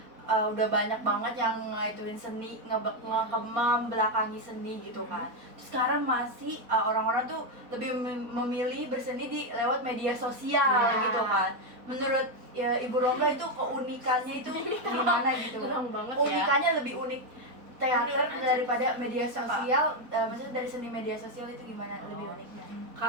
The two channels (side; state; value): left; late; 4.1 ms